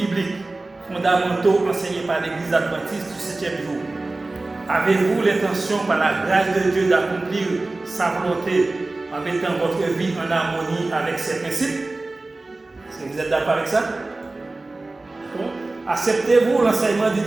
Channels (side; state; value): left; quieter; 3.1 dB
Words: fondamentaux enseignés par l'Église adventiste du 7e jour? Avez-vous l'intention, par la grâce de Dieu, d'accomplir sa volonté en mettant votre vie en harmonie avec ses principes? Est-ce que vous êtes d'accord avec ça? Acceptez-vous l'enseignement du